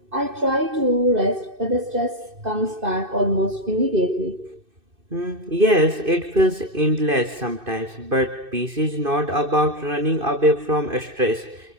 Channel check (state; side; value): late; left; 2.6 ms